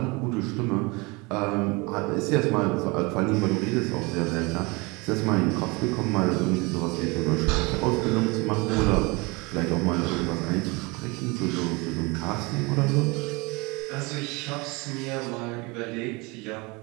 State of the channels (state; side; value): quieter; left; 26.5 dB